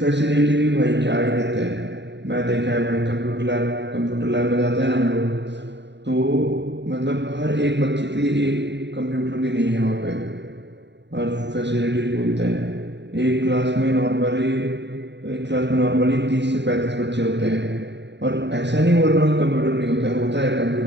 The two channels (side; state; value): left; late; 0.51 ms